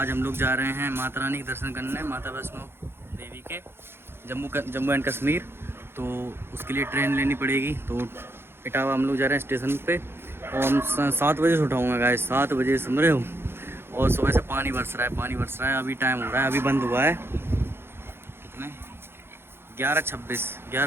हम लोग जा रहे हैं माता रानी के दर्शन करने, माता वैष्णो देवी के जम्मू एंड कश्मीर। तो उसके लिए ट्रेन लेनी पड़ेगी। तो इटावा हम लोग जा रहे हैं स्टेशन पे और हम 7 बजे से उठाऊँगा गाइस, 7 बजे समझ रहे हो। और सुबह से पानी बरस रहा है। अभी टाइम हो रहा है, अभी बंद हुआ है कितने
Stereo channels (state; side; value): late; left; 0.11 ms